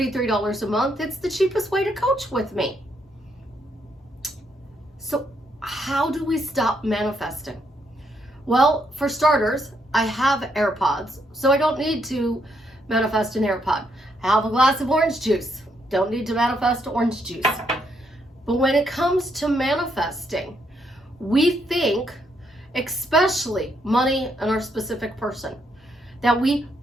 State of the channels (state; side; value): normal; both; correlation 0.75